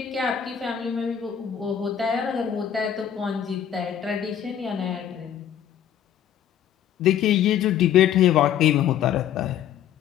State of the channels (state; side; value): quieter; right; 9.7 dB